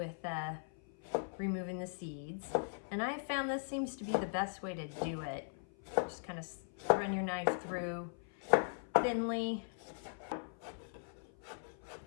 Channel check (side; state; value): right; silent; 51 dB below the other